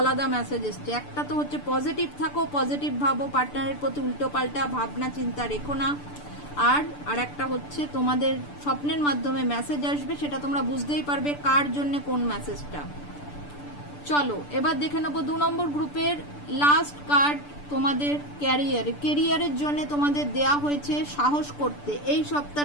মেসেজ এসছে। একটা তো হচ্ছে পজিটিভ থাকো, পজিটিভ ভাবো, পার্টনারের প্রতি উল্টো পাল্টা ভাবনা চিন্তা রেখো না। আর একটা হচ্ছে তোমাদের স্বপ্নের মাধ্যমে মেসেজ আসবে, সেটা তোমরা বুঝতেই পারবে কার জন্য কোন মেসেজটা। চলো এবার দেখে নেবো 2 নম্বর গ্রুপের লাস্ট কার্ড। তোমাদের ক্যারিয়ারের জন্য তোমাদের দেয়া হয়েছে সাহস করতে। এই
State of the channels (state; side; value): late; right; 6.8 ms